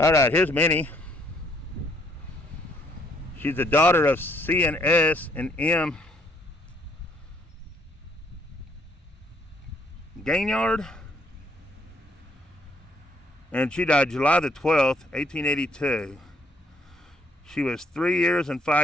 right, here's Minnie. She's the daughter of C and S and M. Granger, and she died July the 12th, 1882. She was 3 years and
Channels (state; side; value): normal; both; correlation 0.68